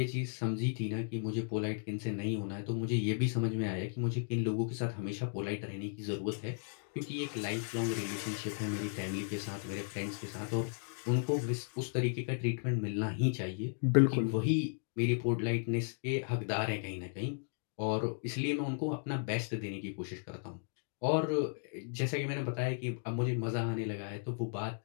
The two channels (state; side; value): silent; right; digital silence